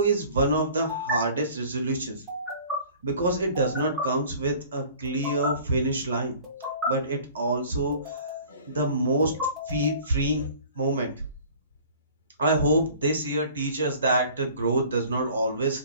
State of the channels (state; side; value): inverted; both; correlation -0.48